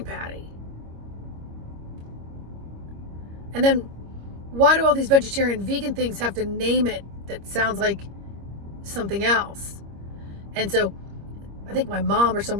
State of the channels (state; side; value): late; left; 25 ms